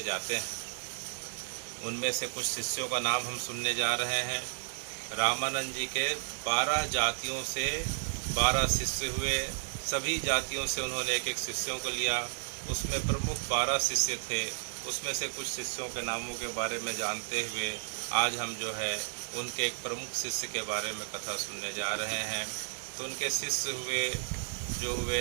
जाते हैं। उनमें से कुछ शिष्यों का नाम हम सुनने जा रहे हैं। रामानंद जी के 12 जातियों से 12 शिष्य हुए। सभी जातियों से उन्होंने एक एक शिष्यों को लिया। उसमें प्रमुख 12 शिष्य थे। उसमें से कुछ शिष्यों के नामों के बारे में जानते हुए आज हम जो है उनके एक प्रमुख शिष्य के बारे में कथा सुनने जा रहे हैं। तो उनके शिष्य हुए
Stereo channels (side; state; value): left; silent; 56 dB below the other